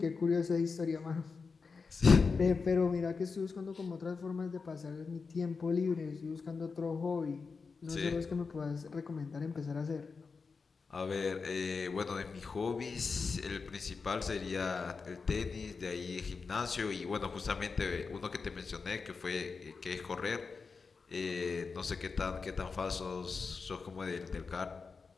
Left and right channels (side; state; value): right; quieter; 4.8 dB